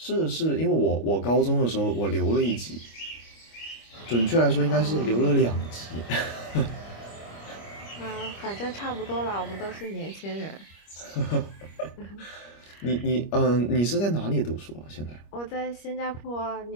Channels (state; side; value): late; right; 25 ms